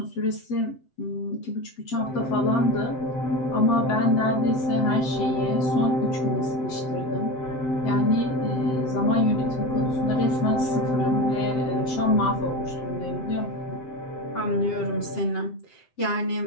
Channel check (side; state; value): right; late; 7.8 ms